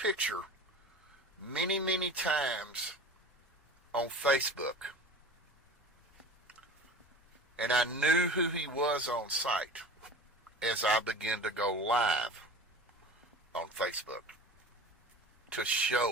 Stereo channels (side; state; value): both; normal; correlation 0.37